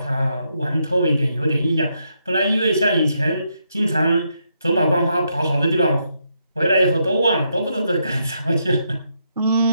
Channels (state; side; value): inverted; both; correlation -0.79